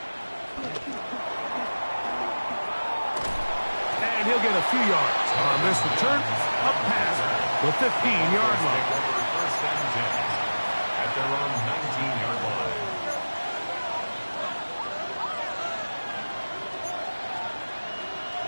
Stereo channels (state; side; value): inverted; both; correlation -1.00